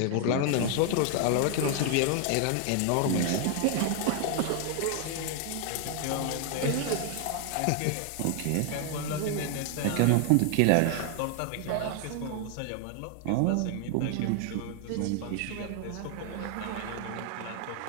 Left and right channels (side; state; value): both; different; correlation 0.00